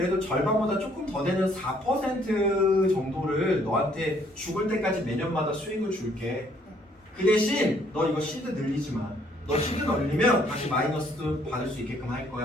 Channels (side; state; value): both; normal; correlation 0.65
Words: 절반보다 조금 더 되는 4% 정도를 너한테 죽을 때까지 매년마다 수익을 줄게. 그 대신 너 이거 시드 늘리지 마. 너 시드 늘리면 다시 마이너스도 받을 수 있게끔 할